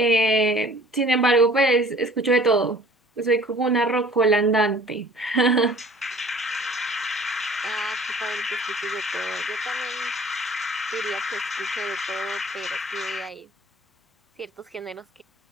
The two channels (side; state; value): both; normal; correlation 0.51